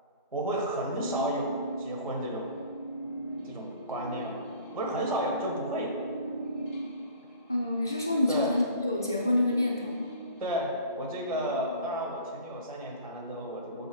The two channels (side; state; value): both; inverted; correlation -0.46